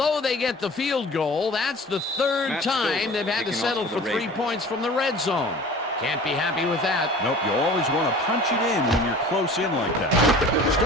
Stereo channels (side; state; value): both; normal; correlation 0.43